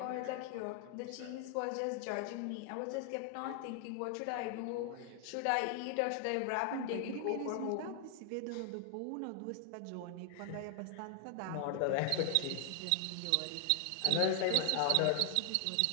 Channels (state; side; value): different; both; correlation 0.00